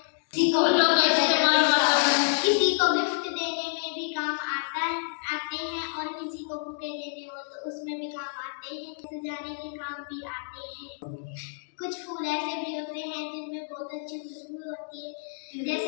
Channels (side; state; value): right; silent; digital silence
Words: किसी को गिफ्ट देने में भी काम आते हैं और किसी को बुके देने हो तो उसमें भी काम आते हैं। सजाने के काम भी आते हैं। कुछ फूल ऐसे भी होते हैं जिनमें बहुत अच्छी खुशबू होती है,